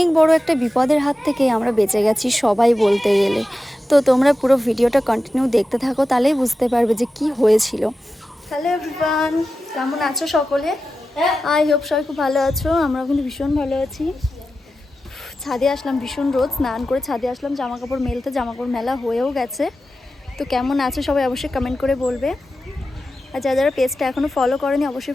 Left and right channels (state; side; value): normal; both; correlation 0.93